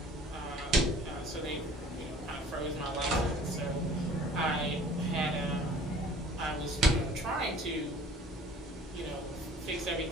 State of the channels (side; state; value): both; normal; correlation 0.50